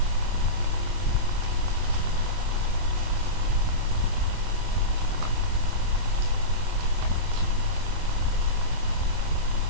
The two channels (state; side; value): late; left; 25 ms